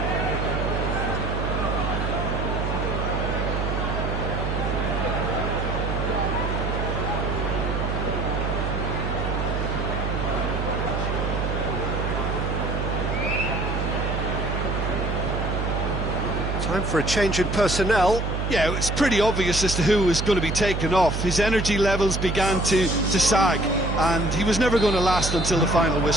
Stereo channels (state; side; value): noise; right; hum, 2 dB below the sound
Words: Time for a change in personnel. Yeah, it's pretty obvious as to who was going to be taken off. His energy levels began to sag, and he was never going to last until the final